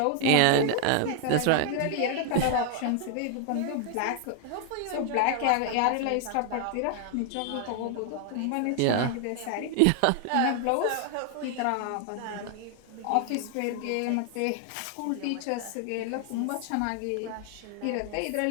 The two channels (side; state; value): both; different; correlation 0.00